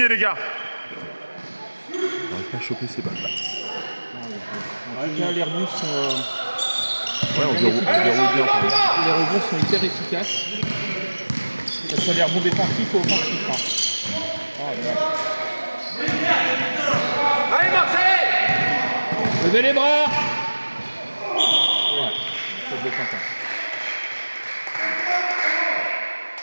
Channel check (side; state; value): both; inverted; correlation -1.00